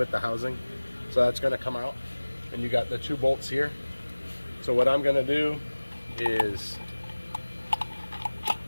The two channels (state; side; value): inverted; both; correlation -1.00